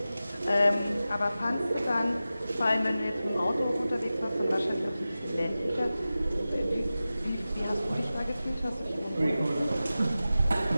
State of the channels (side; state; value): both; inverted; correlation -0.95